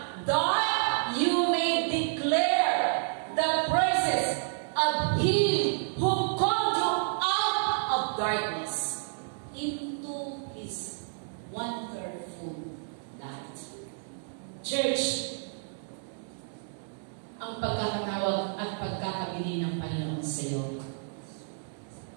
that you may declare the praises of Him who called you out of darkness into His wonderful light. Church, ang pagkakatawag at pagkakabili ng Panginoon sa iyo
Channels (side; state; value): left; silent; digital silence